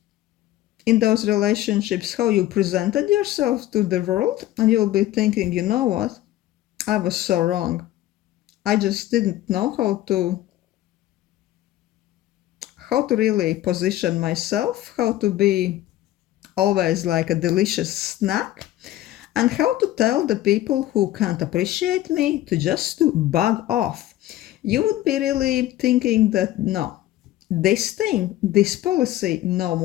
in those relationships, how you presented yourself to the world, and you'll be thinking, you know what, I was so wrong. I just didn't know how to really position myself, how to be always like a delicious snack, and how to tell the people who can't appreciate me to just to bug off. You would be really thinking that no, this thing, this policy, no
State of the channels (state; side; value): quieter; right; 14.4 dB